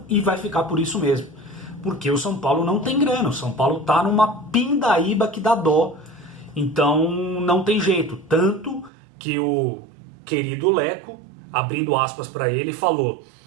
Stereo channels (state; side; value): drops out; left; at 8.9 s